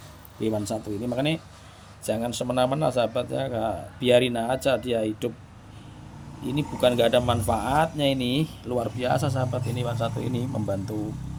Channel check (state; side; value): identical; both; correlation 1.00